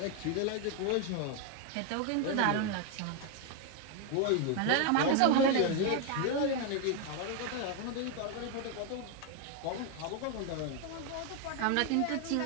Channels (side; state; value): both; different; correlation 0.01